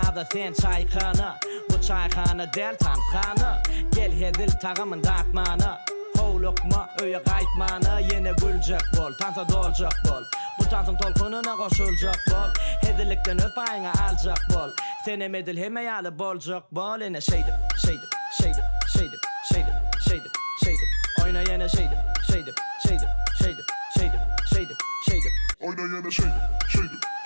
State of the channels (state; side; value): inverted; both; correlation -1.00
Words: sen çaykanı Bu çaykanı del tanıkanı Gel hedil tağımın dağıtmanı Hovlukma öye qaytmanı Yine gülecek bol, tansa dolacak bol Bu tansın tolkununa koşulacak bol Hedilikten öz payına alacak bol Senem edil hemeyalı bolacak bol Yine şeydim Oyna yine şeydim Oyna yana şeydim.